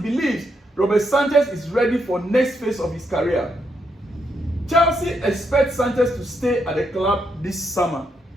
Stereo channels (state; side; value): normal; both; correlation 0.79